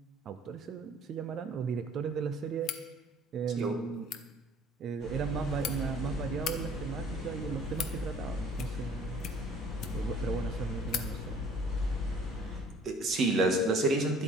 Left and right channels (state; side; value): normal; both; correlation 0.53